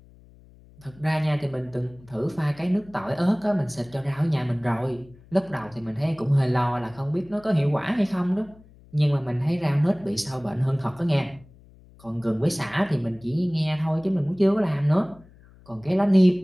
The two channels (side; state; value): left; noise; hum, 25 dB below the sound